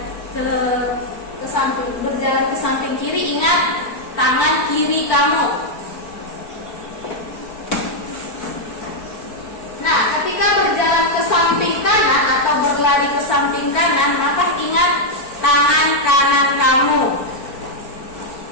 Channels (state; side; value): late; right; 4.5 ms